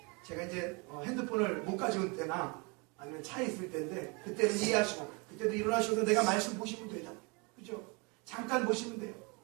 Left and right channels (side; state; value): left; quieter; 30.5 dB